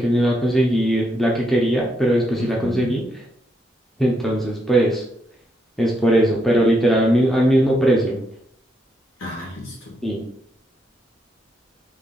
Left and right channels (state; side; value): normal; both; correlation 0.78